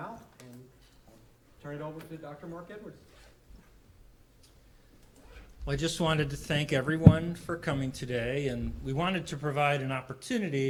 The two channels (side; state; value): both; identical; correlation 1.00